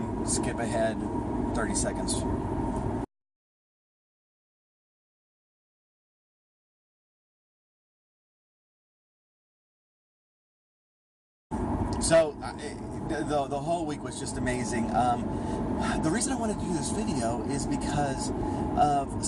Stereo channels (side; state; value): both; identical; correlation 1.00